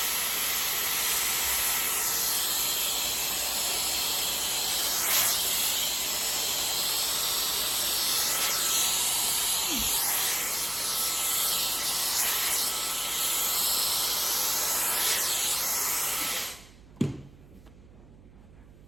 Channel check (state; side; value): noise; right; hum, 23 dB below the sound